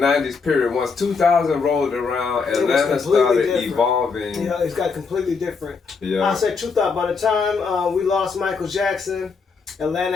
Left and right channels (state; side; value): quieter; right; 5.0 dB